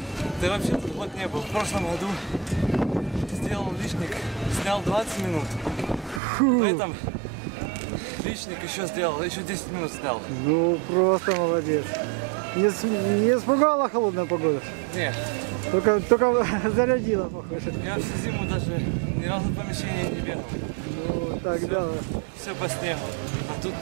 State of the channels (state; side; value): drops out; left; at 6.2 s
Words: Ты вообще тут год не был. В прошлом году сделал личник, снял 20 минут. В этом личник еще сделал, еще 10 минут снял. Ну, просто молодец. Не испугала холодная погода? Нет. Только зарядила, похоже. Я всю зиму даже ни разу в помещении не бегал. Ну, тогда... Все по снегу. А тут